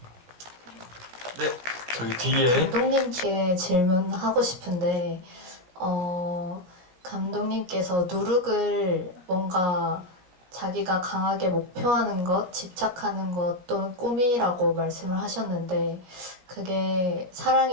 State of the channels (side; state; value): left; late; 17 ms